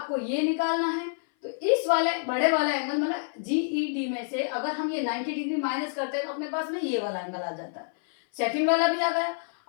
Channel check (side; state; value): right; silent; 57 dB below the other